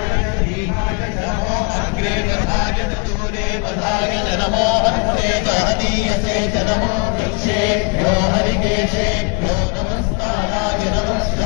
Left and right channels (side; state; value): right; quieter; 33.5 dB